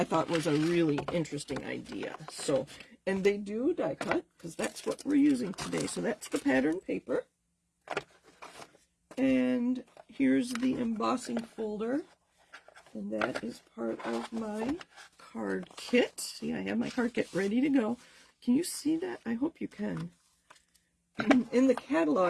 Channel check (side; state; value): both; identical; correlation 1.00